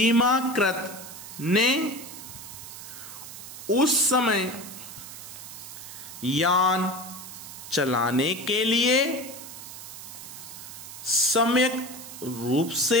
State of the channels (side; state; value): right; noise; hiss, 12 dB below the sound